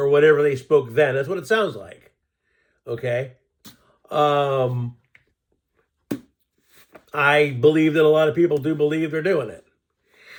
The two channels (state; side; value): identical; both; correlation 1.00